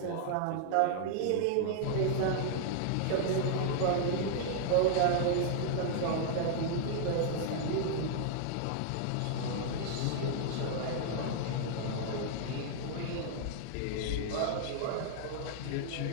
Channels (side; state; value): both; different; correlation -0.01